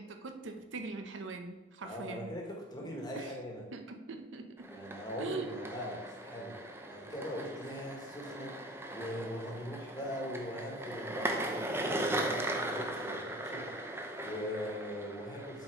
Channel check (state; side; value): normal; both; correlation 0.41